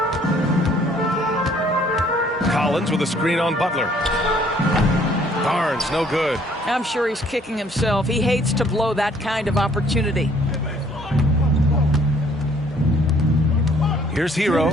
Collins with a screen on Butler. Barnes, no good. I'm sure he's kicking himself. He hates to blow that kind of opportunity. Here's Hero.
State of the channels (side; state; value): both; normal; correlation 0.61